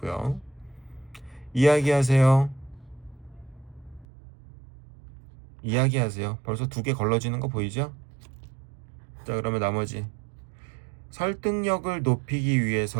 이야기하세요. 이야기하세요. 벌써 두 개 걸러지는 거 보이죠? 자, 그러면 나머지 설득력을 높이기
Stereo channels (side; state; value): left; drops out; at 4.0 s